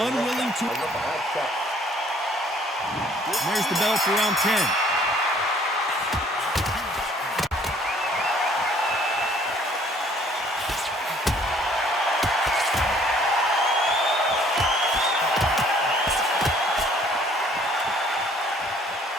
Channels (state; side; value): normal; both; correlation 0.59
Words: to... There's the bell for round 10.